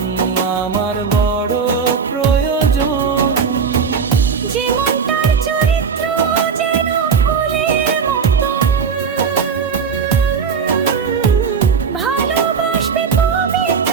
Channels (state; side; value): quieter; left; 6.0 dB